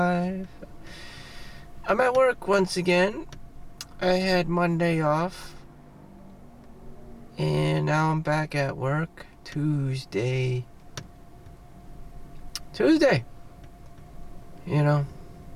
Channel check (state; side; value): identical; both; correlation 1.00